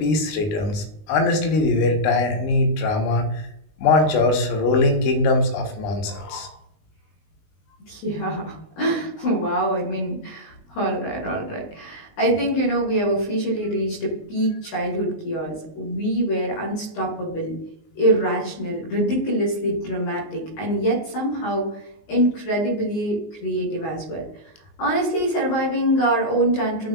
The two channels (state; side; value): late; right; 19 ms